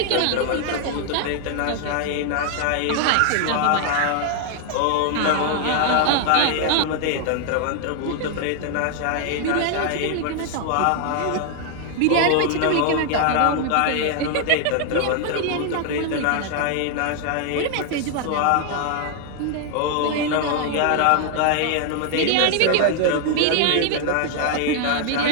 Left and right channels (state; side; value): different; both; correlation 0.00